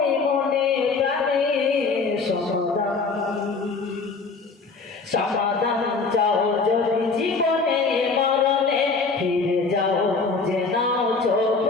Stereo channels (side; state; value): right; quieter; 4.4 dB